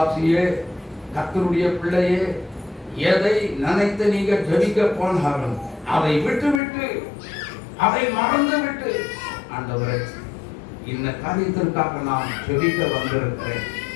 கர்த்தருடைய பிள்ளையே, எதை நினைத்து நீங்க ஜெபிக்க போனாலும் அதை விட்டு அதை மறந்து விட்டு, ஆண்டவரே இந்த காரியத்திற்காக நான் ஜெபிக்க வந்திருக்கிறேன்,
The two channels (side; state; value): right; drops out; at 6.6 s